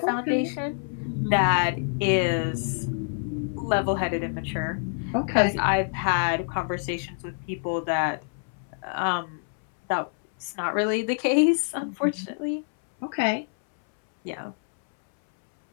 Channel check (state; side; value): silent; right; 61 dB below the other